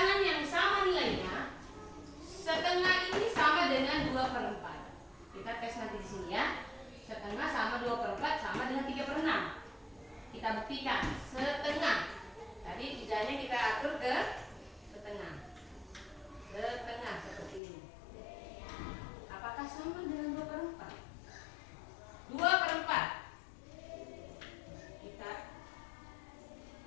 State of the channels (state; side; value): drops out; right; at 17.6 s